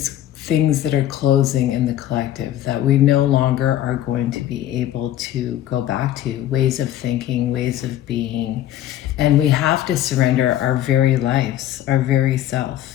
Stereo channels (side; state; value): right; quieter; 12.3 dB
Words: things that are closing in the collective that we no longer are going to be able to go back to, ways of thinking, ways of being, and we have to surrender our very lives, our very